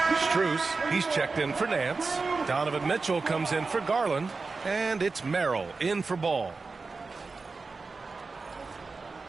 Strus, he's checked in for Nance. Donovan Mitchell comes in for Garland. And it's Merrill in for Ball.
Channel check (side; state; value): left; quieter; 4.1 dB